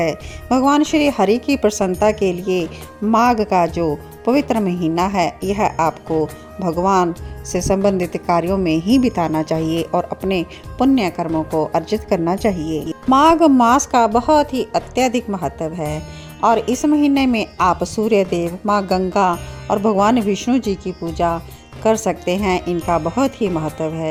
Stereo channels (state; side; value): identical; both; correlation 1.00